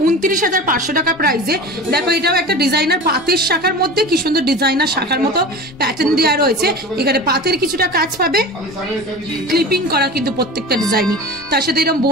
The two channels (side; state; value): both; normal; correlation 0.33